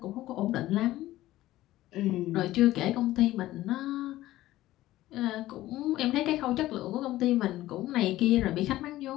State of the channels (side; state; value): right; quieter; 15.7 dB